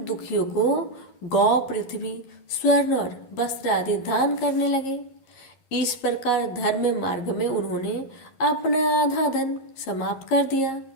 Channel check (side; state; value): right; late; 11 ms